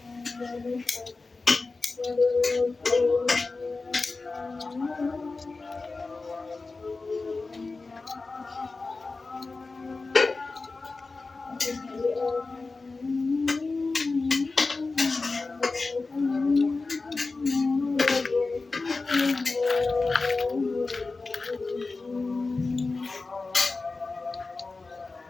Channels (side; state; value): right; quieter; 3.8 dB